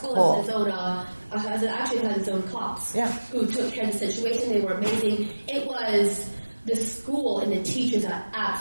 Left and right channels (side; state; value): both; inverted; correlation -1.00